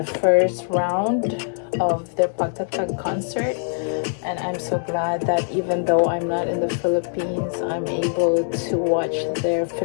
first round of their Pagtatag concert. And I'm so glad that even though I'm not in the Philippines, I'm able to watch their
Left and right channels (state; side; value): silent; right; 62 dB below the other